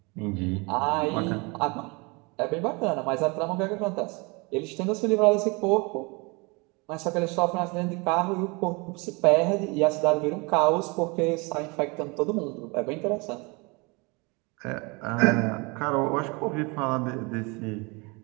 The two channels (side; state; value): left; quieter; 28.2 dB